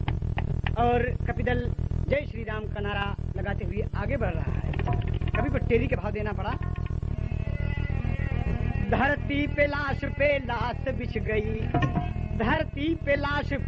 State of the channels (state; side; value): identical; both; correlation 1.00